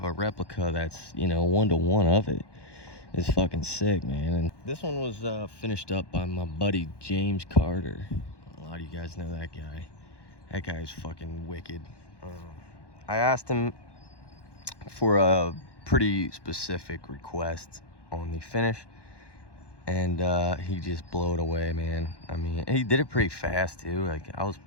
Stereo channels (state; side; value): late; right; 1.1 ms